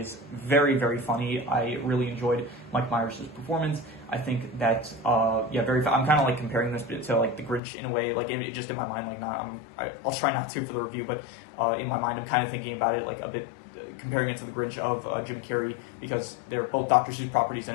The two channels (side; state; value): right; drops out; at 7.6 s